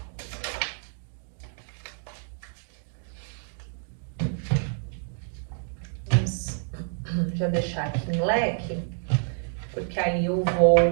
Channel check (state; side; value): silent; left; 58 dB below the other